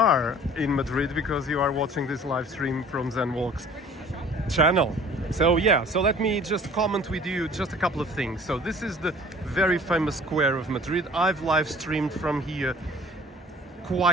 in Madrid because you are watching this live stream from Zen Walks channel. So yeah, so let me just comment with you just a couple of things. So this is the very famous square of Madrid. I've live streamed from here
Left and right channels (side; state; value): both; normal; correlation 0.49